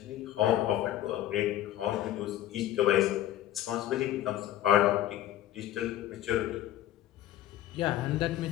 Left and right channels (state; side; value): quieter; right; 13.0 dB